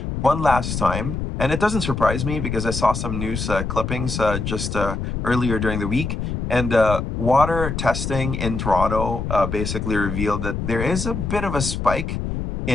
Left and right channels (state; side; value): noise; left; rumble, 3 dB below the sound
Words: one last time, and it doesn't surprise me because I saw some news clippings just earlier during the week, and water testing in Toronto basically revealed that there is a bit of a spike